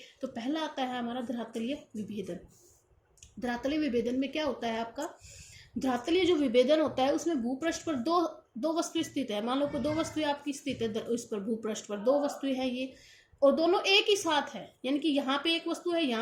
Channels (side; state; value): both; identical; correlation 1.00